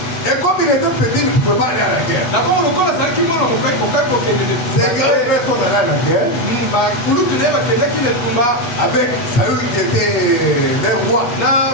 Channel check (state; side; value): late; right; 8.1 ms